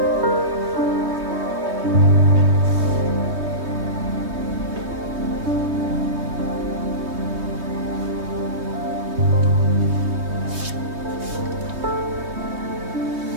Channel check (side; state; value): left; late; 3.2 ms